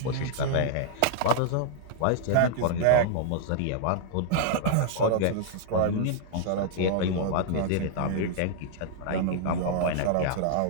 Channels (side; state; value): both; different; correlation -0.01